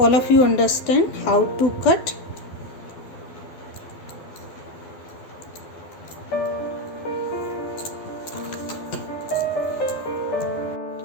of you understand how to cut.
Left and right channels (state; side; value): late; right; 12 ms